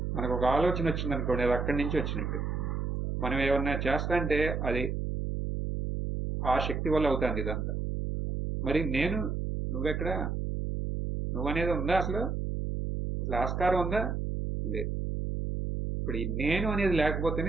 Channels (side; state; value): right; noise; hum, 2 dB below the sound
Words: మనకు ఒక ఆలోచన వచ్చింది అనుకోండి, అది అక్కడి నుంచి వచ్చినట్టు. మనం ఏమన్నా చేస్తా అంటే అది ఆ శక్తి వల్ల అవుతుంది ఇదంతా. మరి నువ్వెక్కడ? నువ్వనేది ఉందా అసలు? ఆస్కారం ఉందా? లేదు. ఇప్పుడు ఈ నేను అనేది